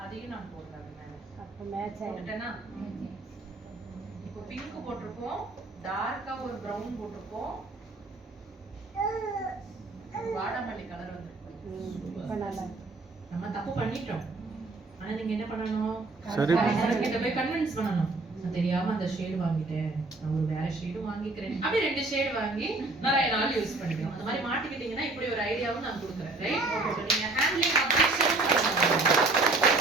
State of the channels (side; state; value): left; quieter; 3.2 dB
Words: அதையும் நான் போடுறேன். அப்ப மேட்ச் போட்டுட்டேனா? இப்போ பிங்க் போட்டுருக்கோம், டார்க்கா ஒரு பிரவுன் போட்டுருக்கோம், வாடாமல்லி கலர் வந்திருக்கு. நம்ம தப்பு பண்ணிட்டோம். ஆனா நீங்க என்ன பண்ணணும்? சரி, கிட்ட போய் கன்வின்ஸ் பண்ணணும். நான் தெரியாம அந்த ஷேட் வாங்கிட்டேன், நான் ஒரு வேற ஷேடும் வாங்கிக்கிறேன். அப்படி 2 ஷேட் வாங்கி நிறைய நாள் யூஸ் பண்ணிக்கலாம். அந்த மாதிரி மாட்டிக்கிட்டீங்கன்னா இப்படி ஒரு ஐடியாவும் நான் கொடுக்குறேன். ரைட்? சோ நீங்க ஹேண்ட்லிங் அப்டேஷன்